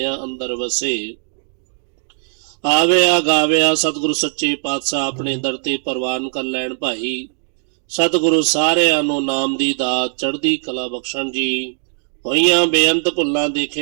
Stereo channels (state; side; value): silent; left; digital silence